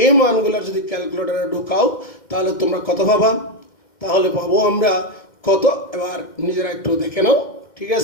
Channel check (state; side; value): late; right; 2.1 ms